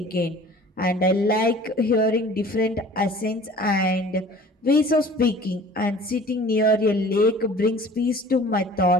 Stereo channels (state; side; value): normal; both; correlation 0.46